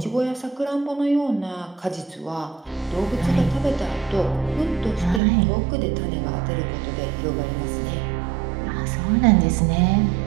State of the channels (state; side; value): drops out; left; at 5.2 s